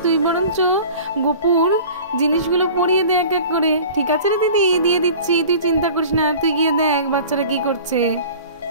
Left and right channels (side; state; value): both; inverted; correlation -0.42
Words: তুই বরঞ্চ গপুর জিনিসগুলো পরিয়ে দে এক এক করে। ঠিক আছে রে দিদি, দিয়ে দিচ্ছি, তুই চিন্তা করিস না, তুই গিয়ে দেখ বাচ্চারা কি করছে।